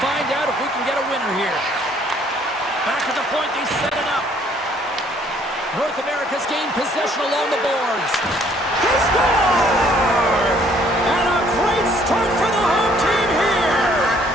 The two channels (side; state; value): both; normal; correlation 0.62